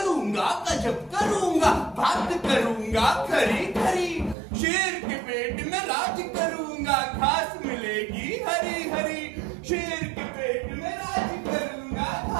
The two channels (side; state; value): left; drops out; at 4.4 s